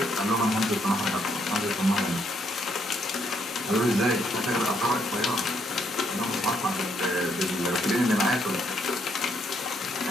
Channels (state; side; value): normal; both; correlation 0.73